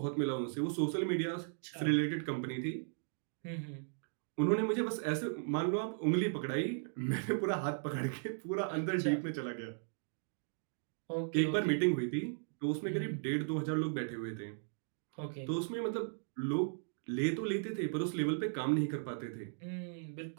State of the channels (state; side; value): silent; left; digital silence